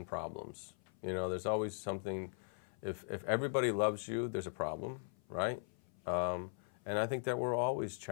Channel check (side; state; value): right; silent; 51 dB below the other